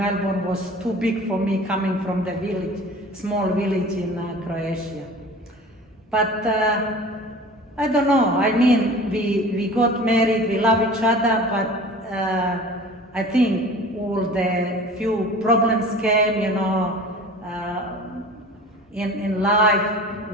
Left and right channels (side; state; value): both; normal; correlation 0.41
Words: was too big for me coming from the village, small village in Croatia. But I don't know, I mean, we got married, we love each other, but I think all the few problems came, you know, in life,